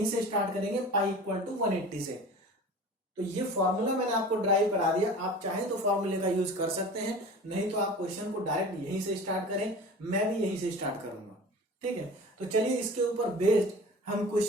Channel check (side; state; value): both; normal; correlation 0.38